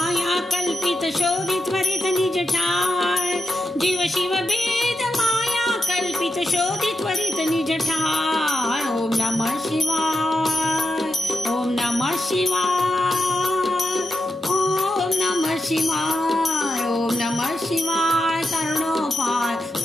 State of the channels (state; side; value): normal; both; correlation 0.87